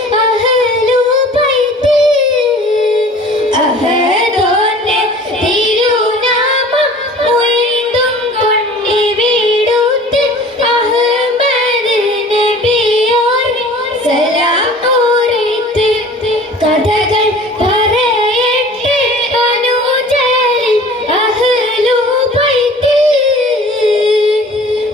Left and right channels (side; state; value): both; normal; correlation 0.45